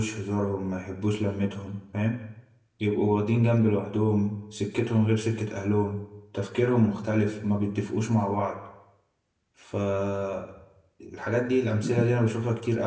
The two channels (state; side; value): identical; both; correlation 1.00